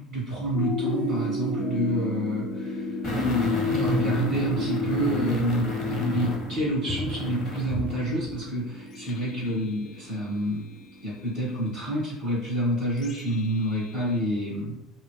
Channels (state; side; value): normal; both; correlation 0.30